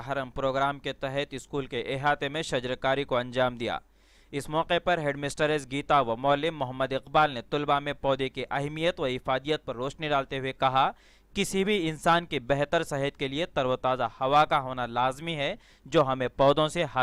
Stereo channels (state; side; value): identical; both; correlation 1.00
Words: हरम प्रोग्राम के तहत स्कूल के अहाते में शजरकारी को अंजाम दिया। इस मौके पर हेडमिस्ट्रेस गीता व मौलिम मोहम्मद इकबाल ने तलबा में पौधे की अहमियत व इफादियत पर रोशनी डालते हुए कहा, किसी भी इंसान की बेहतर सेहत के लिए तरोताज़ा हवा का होना लाजमी है, जो हमें पौधों से